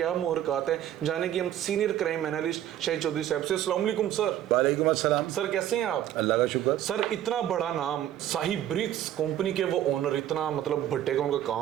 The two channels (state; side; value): quieter; left; 11.7 dB